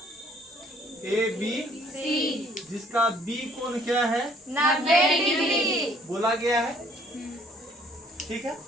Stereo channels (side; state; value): both; normal; correlation 0.61